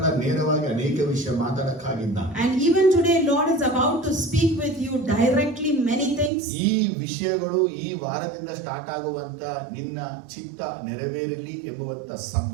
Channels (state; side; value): drops out; left; at 6.3 s